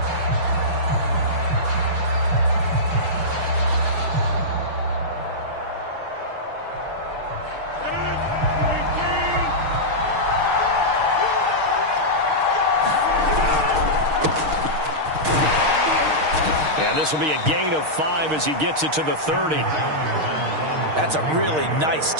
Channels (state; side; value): late; left; 6.5 ms